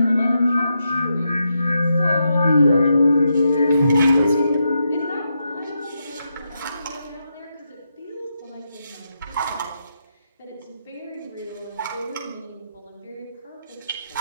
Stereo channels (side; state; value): both; inverted; correlation -0.84